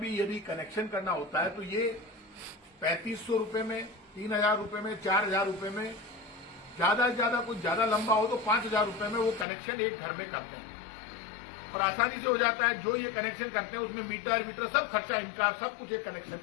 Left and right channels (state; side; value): drops out; right; at 9.5 s